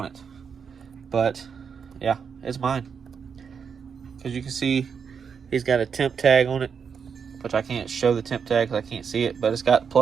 it. But yeah, it's mine. Because you can see he's got a temp tag on it, which I can't show the temp tag because I can't see it, but it's got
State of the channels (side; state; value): left; quieter; 6.5 dB